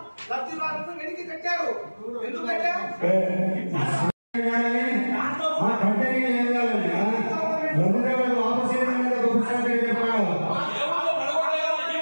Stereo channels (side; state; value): both; inverted; correlation -1.00